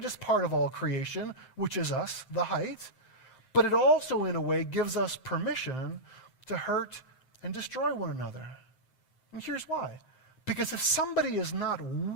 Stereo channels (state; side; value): late; right; 7.7 ms